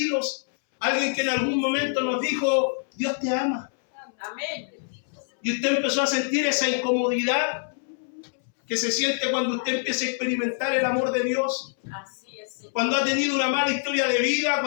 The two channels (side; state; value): right; silent; 62 dB below the other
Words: alguien que en algún momento nos dijo, Dios te ama. Amén. Y usted empezó a sentir esa incomodidad que se siente cuando usted empieza a experimentar el amor de Dios. Así es, Señor. Cuando ha tenido una mala historia de vida,